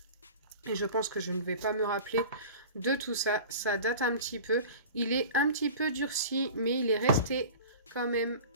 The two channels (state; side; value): inverted; both; correlation -0.38